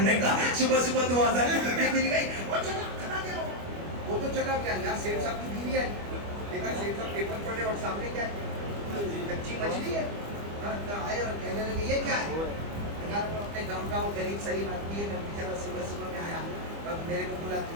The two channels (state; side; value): late; left; 25 ms